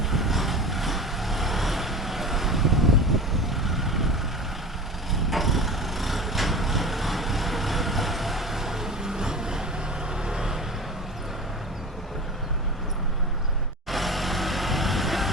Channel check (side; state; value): both; normal; correlation 0.33